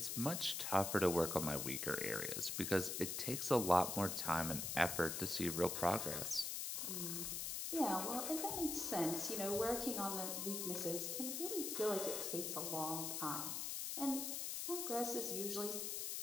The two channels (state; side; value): noise; left; hiss, 2 dB below the sound